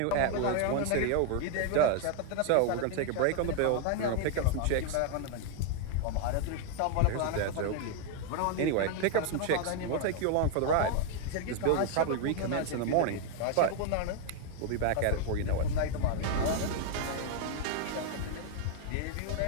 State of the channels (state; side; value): different; both; correlation 0.00